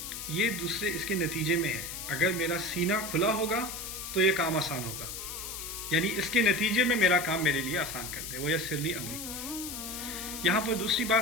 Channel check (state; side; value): noise; left; hiss, 7 dB below the sound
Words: یہ دوسرے اس کے نتیجے میں ہے. اگر میرا سینہ کھلا ہوگا تو یہ کام آسان ہوگا, یعنی اس کے نتیجے میں میرا کام میرے لیے آسان کر دے. ویسر لی امری. یہاں پر دوسری